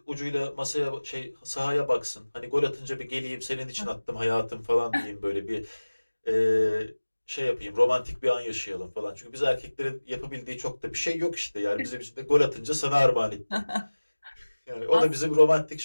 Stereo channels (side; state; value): both; inverted; correlation -1.00